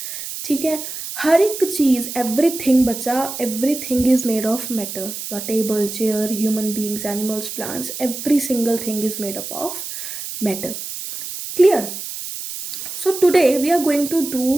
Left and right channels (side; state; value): right; noise; hiss, 8 dB below the sound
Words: ठीक है, हर एक चीज़, एवरीथिंग बच्चा, everything is made of matter. Your table, chair, human beings, animals, plants, every single thing is made up of matter. Clear? So today we are going to